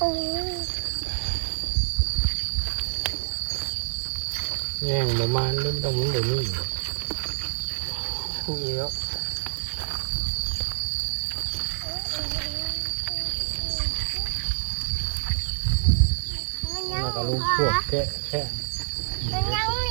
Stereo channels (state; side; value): silent; left; 60 dB below the other